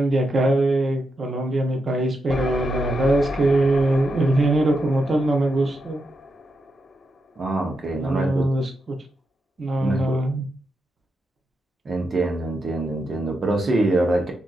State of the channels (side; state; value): both; normal; correlation 0.85